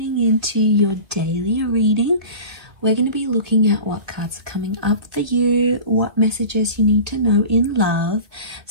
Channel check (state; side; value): late; left; 1.8 ms